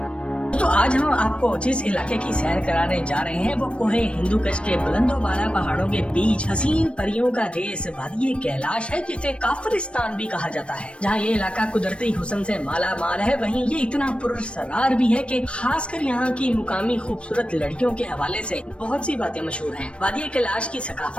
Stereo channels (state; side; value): late; right; 0.059 ms